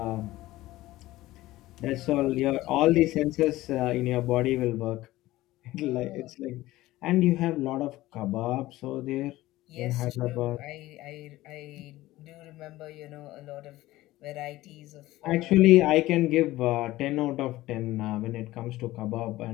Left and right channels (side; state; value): right; quieter; 17.0 dB